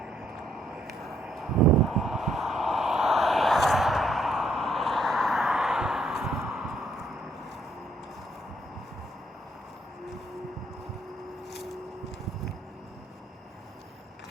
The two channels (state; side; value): normal; both; correlation 0.70